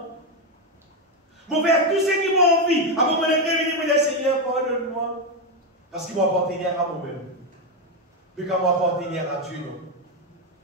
Je faire tout ce qui m'a envie. Avant mon existe, je dis, oui, Seigneur, pardonne-moi. Parce qu'il m'appartenir à moi-même. Mais quand m'appartenir à Dieu, non.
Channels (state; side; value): normal; both; correlation 0.07